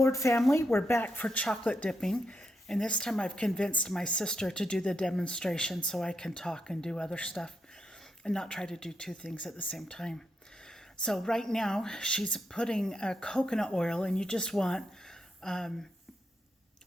family. We're back for chocolate dipping, and this time I've convinced my sister to do the demonstration so I can talk and do other stuff and not try to do two things at the same time. So right now she's putting coconut oil, and you just want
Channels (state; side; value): normal; both; correlation 0.82